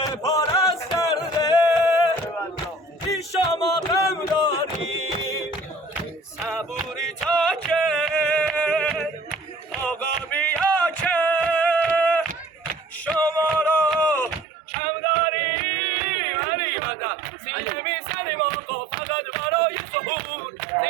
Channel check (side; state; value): left; drops out; at 14.5 s